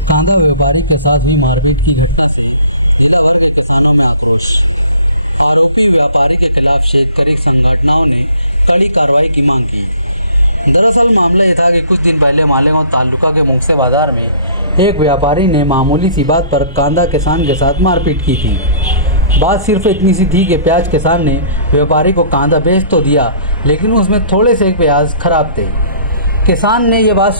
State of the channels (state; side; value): inverted; both; correlation -0.53